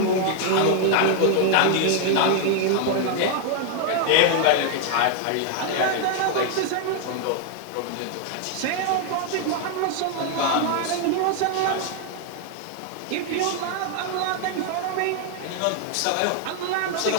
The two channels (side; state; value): both; different; correlation 0.00